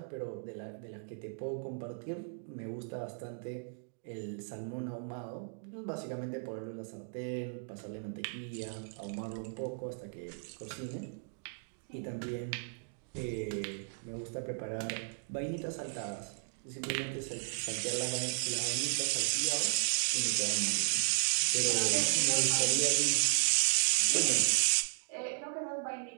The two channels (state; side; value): silent; left; digital silence